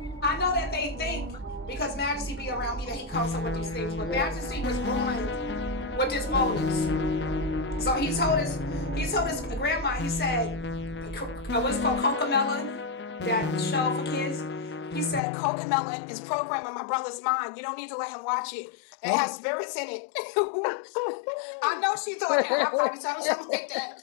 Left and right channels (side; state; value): right; drops out; at 15.2 s